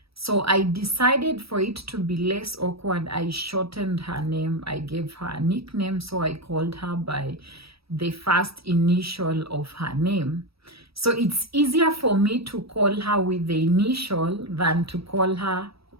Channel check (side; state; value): left; late; 0.77 ms